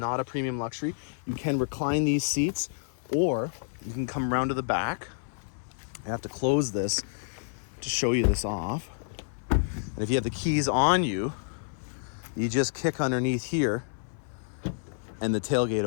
a premium luxury. You can recline these seats, or you can come around to the back. I have to close this to show you this off. And if you have the keys on you, you just kick underneath here and the tailgate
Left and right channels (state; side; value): silent; right; 58 dB below the other